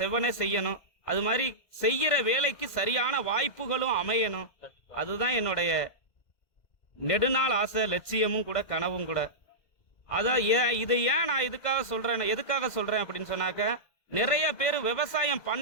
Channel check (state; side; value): late; right; 2.0 ms